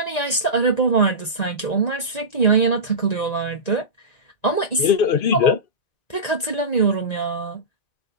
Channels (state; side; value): late; right; 1.9 ms